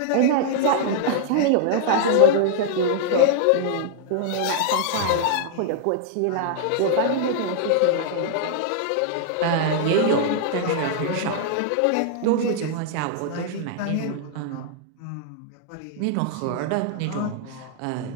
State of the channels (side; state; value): both; different; correlation -0.01